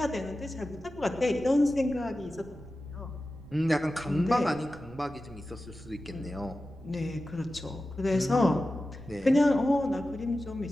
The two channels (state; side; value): noise; right; rumble, 18 dB below the sound